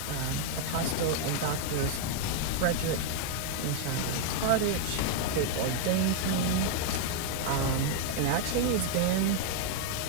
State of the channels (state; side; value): different; both; correlation 0.00